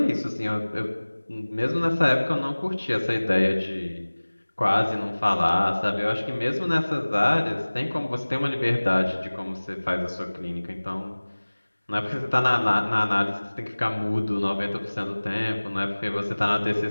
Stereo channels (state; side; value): inverted; both; correlation -1.00